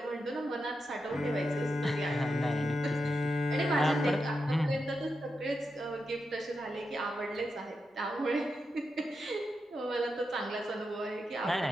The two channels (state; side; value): normal; both; correlation 0.87